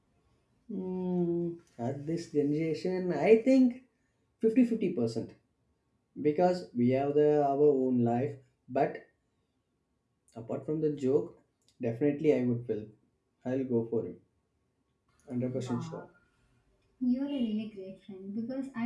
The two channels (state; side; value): identical; both; correlation 1.00